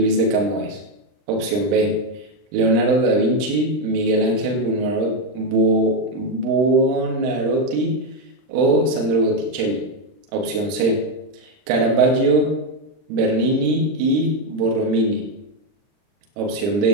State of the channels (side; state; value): left; late; 39 ms